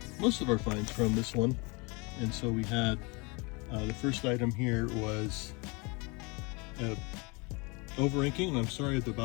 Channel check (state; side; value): quieter; right; 29.1 dB